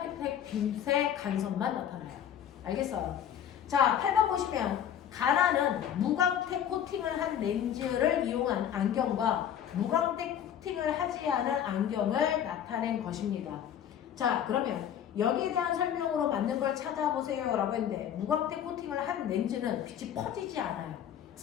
빛의 간섭만 나타나요. 알겠어요? 자, 8번 보시면 가나는 무광택 코팅을 한 렌즈를 이용한 안경과 무광택 코팅을 하지 않은 안경을 나타낸 것입니다. 자, 그러면 여기에 대한 설명으로 맞는 걸 찾아보세요 라고 했는데 무광택 코팅을 한 렌즈는 빛이 퍼지지 않아요.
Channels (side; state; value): right; quieter; 9.6 dB